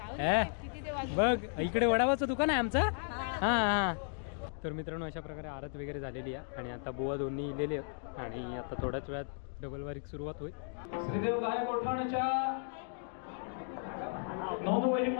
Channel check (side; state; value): right; silent; 54 dB below the other